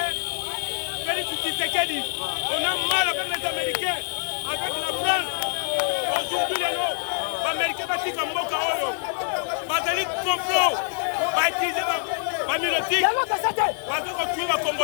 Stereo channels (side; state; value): right; silent; 62 dB below the other